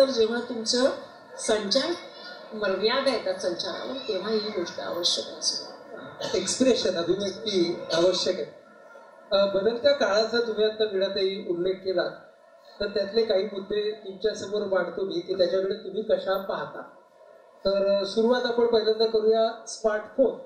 जेव्हा तुमचं संचार मर्यादा येतात संचारावर, तेव्हा ही गोष्ट आवश्यक असेल. एक्सप्रेशन, अभिव्यक्ती आवश्यक आहे. बदलत्या काळाचा तुम्ही आता वीणाताई उल्लेख केला, तर त्यातले काही मुद्दे तुमच्या समोर मांडतो मी की त्याच्याकडे तुम्ही कशा पाहता. तर सुरुवात आपण पहिल्यांदा करूया स्मार्टफोन.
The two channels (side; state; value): both; identical; correlation 1.00